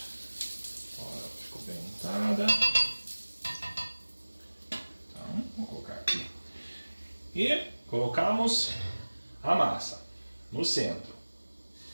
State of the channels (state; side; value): inverted; both; correlation -1.00